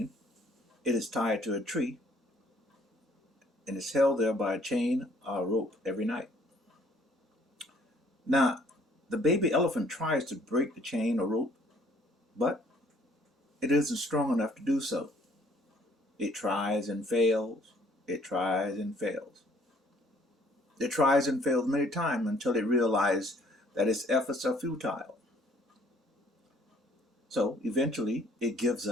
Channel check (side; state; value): both; normal; correlation 0.60